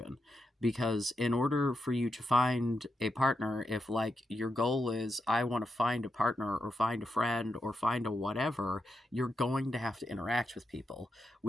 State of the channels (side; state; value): both; normal; correlation 0.86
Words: Because in order for you to find a partner, if like your goal is I want to find a partner or find a friend or find a whatever, you're going to have to interact with people,